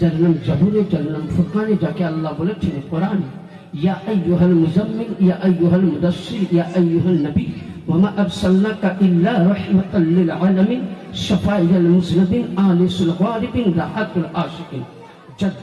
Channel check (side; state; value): both; identical; correlation 1.00